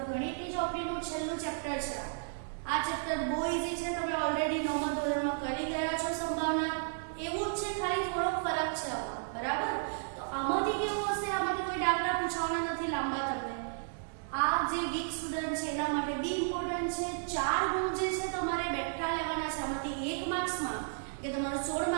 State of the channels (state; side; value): silent; left; 56 dB below the other